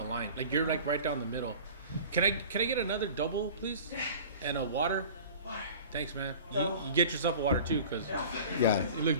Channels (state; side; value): inverted; both; correlation -0.41